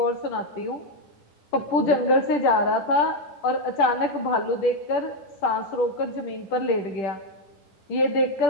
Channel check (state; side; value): late; right; 10 ms